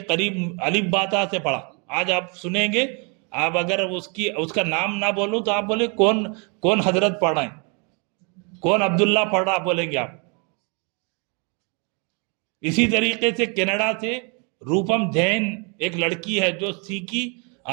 قریب الف با تا سے پڑھا۔ آج آپ سنیں گے، آپ اگر اس کا نام نہ بولوں تو آپ بولے کون حضرت پڑھ رہے ہیں، کون عبداللہ پڑھ رہا بولیں گے آپ۔ اسی طریقے سے کینیڈا سے روپم جین ایک لڑکی ہے جو سیکھی،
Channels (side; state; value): left; quieter; 34.8 dB